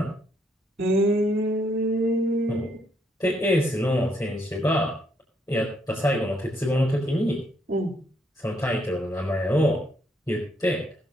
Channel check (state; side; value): normal; both; correlation 0.73